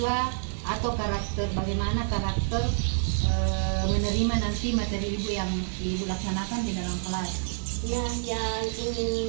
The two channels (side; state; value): left; silent; digital silence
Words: atau bagaimana karakter menerima nanti materi Ibu yang Ibu laksanakan di dalam kelas. Ya, yang